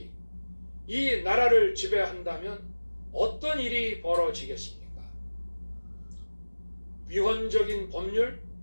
이 나라를 지배한다면 어떤 일이 벌어지겠습니까? 위헌적인 법률,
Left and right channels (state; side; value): inverted; both; correlation -1.00